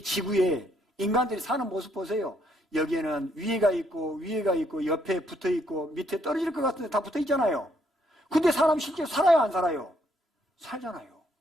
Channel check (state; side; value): normal; both; correlation 0.72